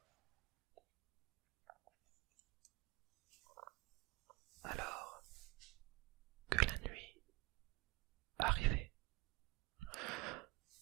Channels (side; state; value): left; quieter; 23.4 dB